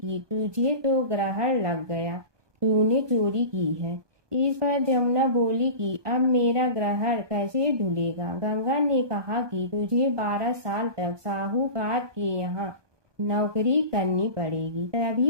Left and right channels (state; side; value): late; left; 1.2 ms